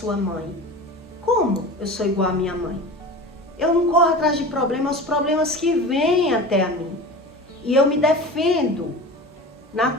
mãe. Como eu sou igual à minha mãe? Eu não corro atrás de problemas, os problemas que vêm até a mim. E eu me defendo.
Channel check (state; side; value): normal; both; correlation 0.33